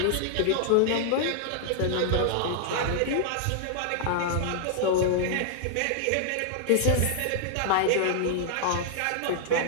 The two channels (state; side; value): different; both; correlation 0.00